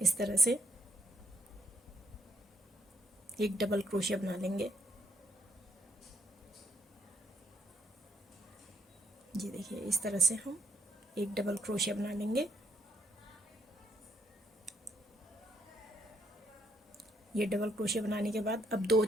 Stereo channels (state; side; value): normal; both; correlation 0.70